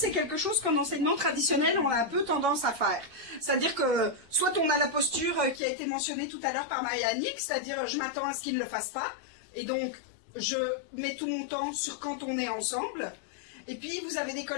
quelque chose qu'en enseignement traditionnel, on a un peu tendance à faire. C'est-à-dire que, soit on a la posture qui a été mentionnée tout à l'heure par Maïanik, c'est-à-dire je m'attends à ce qu'il ne le fasse pas, et donc je mets tout mon temps sur quand on est ensemble. Et puis, vous avez des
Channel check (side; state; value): right; drops out; at 5.6 s